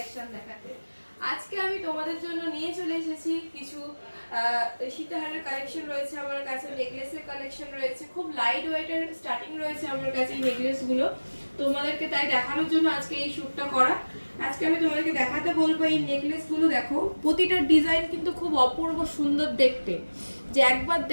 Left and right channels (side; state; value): both; inverted; correlation -1.00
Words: দেখাতে। আজকে আমি তোমাদের জন্য নিয়ে চলে এসেছি কিছু সীতাহারের কালেকশন রয়েছে আমার কাছে, নেকলেসের কালেকশন রয়েছে, খুব লাইট ওয়েটের স্টার্টিং রয়েছে আমার কাছে এই নেকলেসগুলো। তোমাদেরকে তাই দেখানোর জন্য আজকে এই শ্যুটটা করা। আজকে আমি তোমাদেরকে দেখাতে বলবো এই নেকলেসগুলো। দেখো, প্রতিটা ডিজাইন কিন্তু খুব অপূর্ব সুন্দর দেখতে, যে একবার